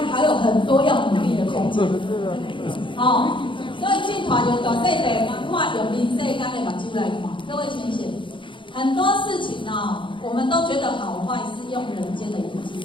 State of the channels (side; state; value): right; late; 0.24 ms